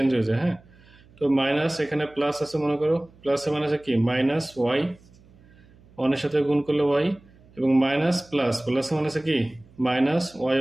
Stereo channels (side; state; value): right; noise; hum, 27 dB below the sound